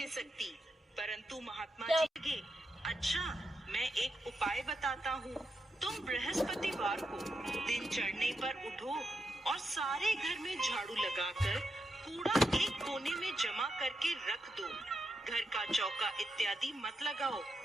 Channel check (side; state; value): both; normal; correlation 0.85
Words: सकती। परंतु महात्मा जी लगे, अच्छा, मैं एक उपाय बताता हूँ। तुम बृहस्पतिवार को दिन चढ़ने पर उठो और सारे घर में झाड़ू लगाकर कूड़ा एक कोने में जमा करके रख दो। घर का चौका इत्यादि मत लगाओ।